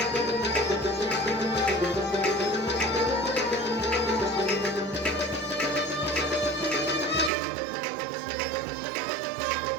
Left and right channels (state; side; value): drops out; left; at 7.3 s